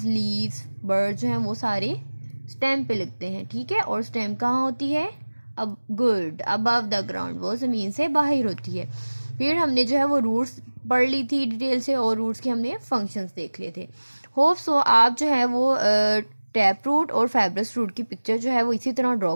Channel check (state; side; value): inverted; both; correlation -1.00